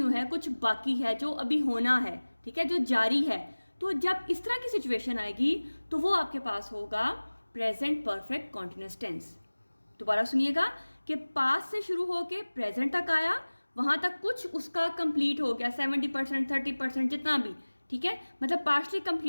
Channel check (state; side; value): inverted; both; correlation -1.00